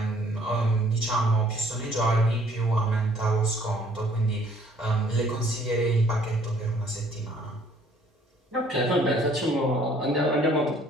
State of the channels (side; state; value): both; normal; correlation 0.59